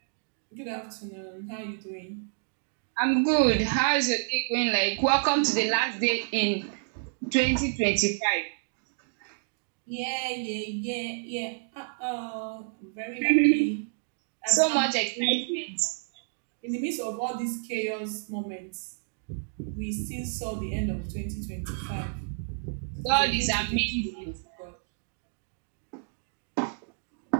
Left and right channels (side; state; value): left; silent; digital silence